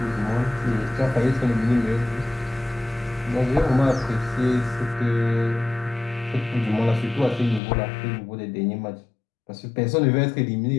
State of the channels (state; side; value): drops out; right; at 7.6 s